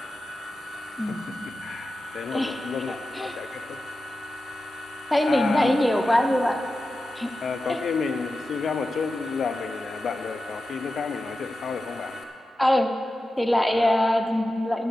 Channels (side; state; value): both; normal; correlation 0.92